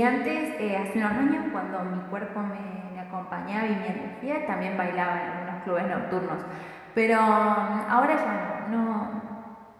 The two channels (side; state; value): both; identical; correlation 1.00